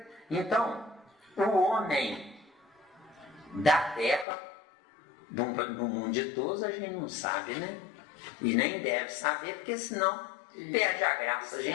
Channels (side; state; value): right; drops out; at 4.2 s